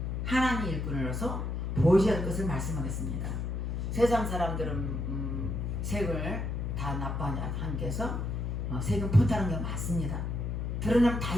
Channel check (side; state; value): left; noise; hum, 2 dB below the sound